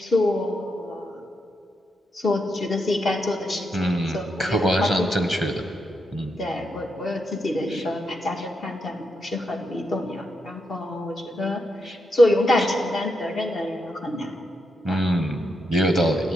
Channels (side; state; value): both; normal; correlation 0.83